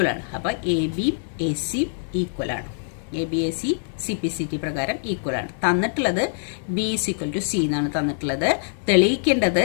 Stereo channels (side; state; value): right; silent; digital silence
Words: ആണ്. അപ്പോൾ AB AC ഈക്വൽ ആണ്. ABAC CPCT പ്രകാരം ഈക്വൽ ആണ്. തന്നിട്ടുള്ളത് B = C എന്നാണ് തന്നിട്ടുള്ളത്. തെളിയിക്കേണ്ടത്